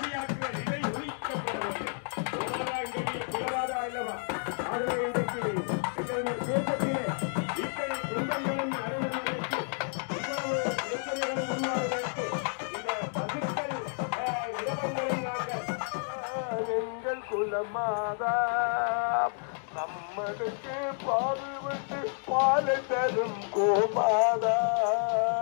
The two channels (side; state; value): right; silent; 55 dB below the other